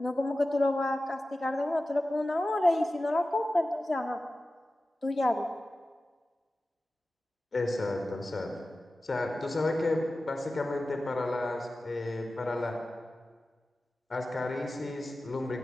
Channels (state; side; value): normal; both; correlation 0.95